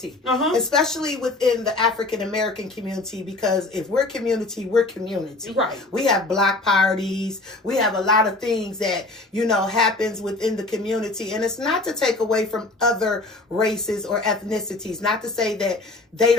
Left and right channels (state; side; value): quieter; right; 3.0 dB